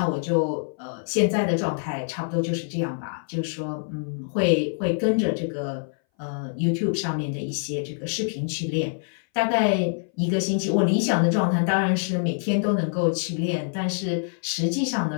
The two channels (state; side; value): silent; right; 60 dB below the other